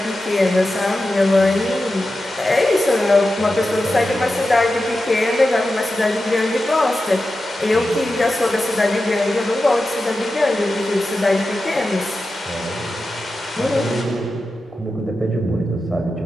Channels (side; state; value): both; normal; correlation 0.92